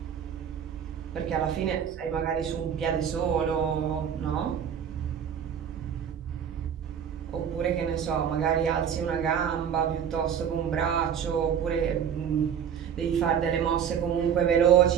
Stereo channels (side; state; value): left; quieter; 8.3 dB